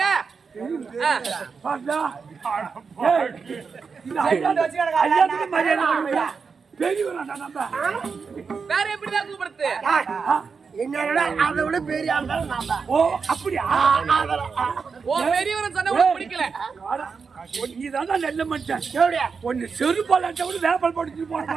வேற எப்படிதான் கூப்பிடுறது என்னடா அதை விட பெரிய ஆள் நான் தான். ஓ அப்படியா ஓ பெரியவரை சொன்ன உனக்கு பிடிக்கல நீதான் நெல்ல மனுஷன் எப்படியா ஒன்னு செருப்பால கூட வேப்பல் படிச்சு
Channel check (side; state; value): left; quieter; 5.4 dB